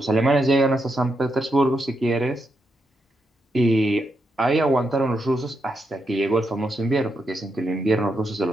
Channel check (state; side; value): normal; both; correlation 0.83